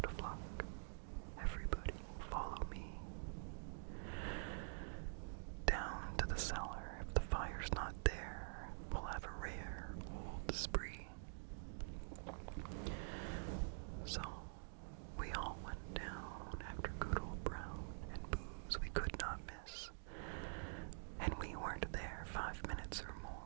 of luck. Everybody follow me. Down to the cellar. If the fire's not there, we'll have a rare old spree." So we all went down after good old Brown, and booze we could not miss. And we weren't there 5 minutes or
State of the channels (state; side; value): silent; left; digital silence